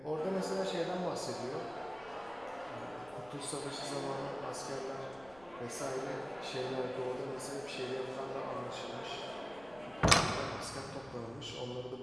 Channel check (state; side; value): noise; left; rumble, 22 dB below the sound